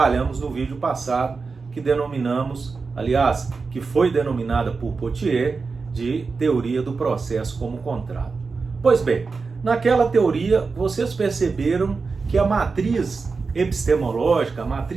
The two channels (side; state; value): left; quieter; 4.5 dB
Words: no vídeo passado, que denominamos, aliás, que foi denominada por Pottier de teoria do processo como contrato. Pois bem, naquela teoria vocês perceberam que a matriz epistemológica, a